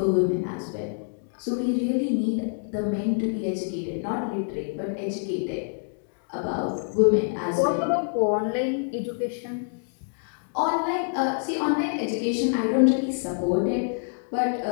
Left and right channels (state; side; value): silent; right; digital silence